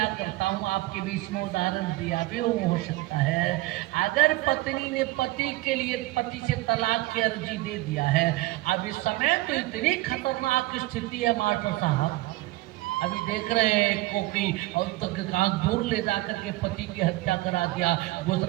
करता हूँ, आपके बीच में उदाहरण दिया भी हो सकता है। अगर पत्नी ने पति के लिए पति से तलाक की अर्जी दे दिया है, अब इस समय तो इतनी खतरनाक स्थिति है मास्टर साहब, अभी देख रहे हैं को कि और तक कहाँ दूर ले जाकर के पति की हत्या करा दिया।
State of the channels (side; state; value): left; quieter; 19.2 dB